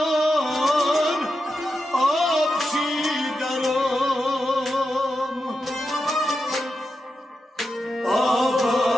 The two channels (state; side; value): normal; both; correlation 0.88